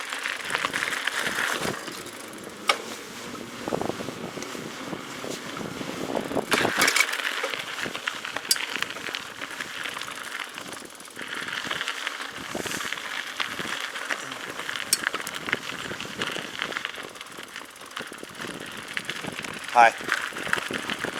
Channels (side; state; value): both; identical; correlation 1.00